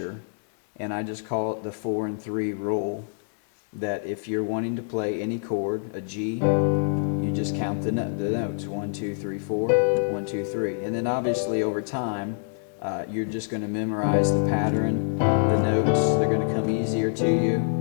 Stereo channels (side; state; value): right; silent; digital silence